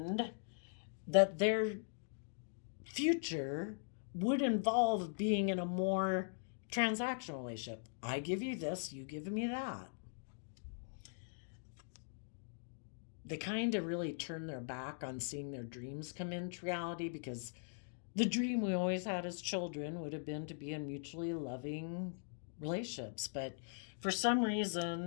that their future would involve being in a more transactional relationship. I give you this, you give me that. They kind of really turn their back on seeing their dreams come into reality, because the dream we always had as children would have been to be in mutually loving relationships. But for some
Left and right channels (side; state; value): right; silent; digital silence